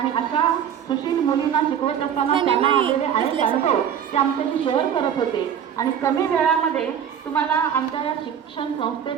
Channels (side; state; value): left; quieter; 8.7 dB